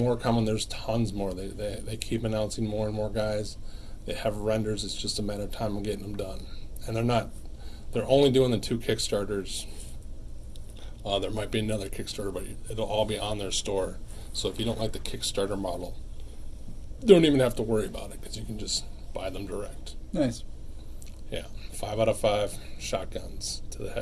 coming. There's tons more. They keep announcing more and more guys. They have renders. It's just a matter of time of getting them done. And They're only doing the 2 Kickstarters. There might be another Kickstarter, but it'll all be on their store. So if you don't like the Kickstarter model, don't even have to worry about it because you can just buy them direct. Nice. Yeah, 5 out of 5 shotguns to the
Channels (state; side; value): identical; both; correlation 1.00